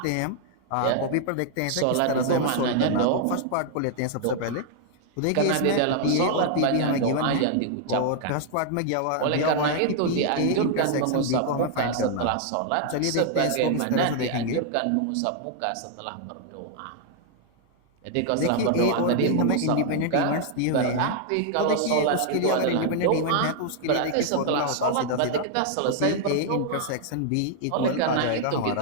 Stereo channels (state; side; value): different; both; correlation 0.00